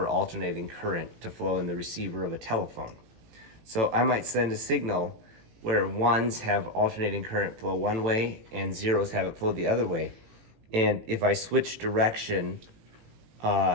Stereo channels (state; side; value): late; left; 18 ms